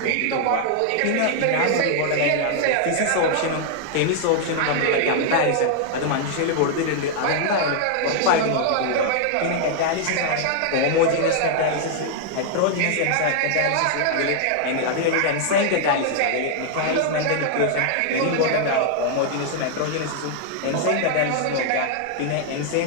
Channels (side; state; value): both; different; correlation 0.00